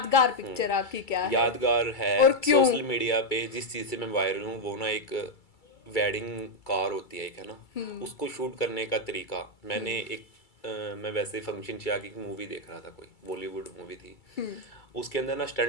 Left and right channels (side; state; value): right; late; 2.3 ms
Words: पिक्चर आपकी क्या है? यादगार है और क्यों? सोशल मीडिया पे जिस चीज़ से मैं वायरल हूँ वो ना एक वेडिंग कार होती है एक, है ना, उसको शूट करने का तरीका मैंने एक मैं वैसे फंक्शन से आके एक मूवी देख रहा था, कोई बॉलीवुड मूवी थी, उसके अंदर ना